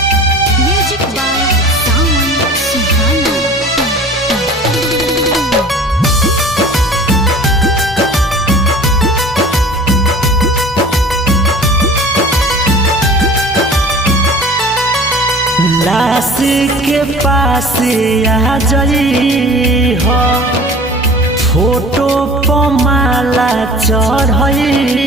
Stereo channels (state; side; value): normal; both; correlation 0.43